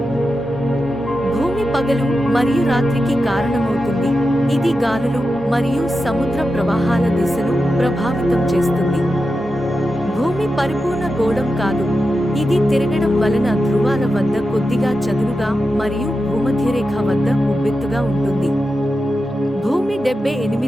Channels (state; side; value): normal; both; correlation 0.90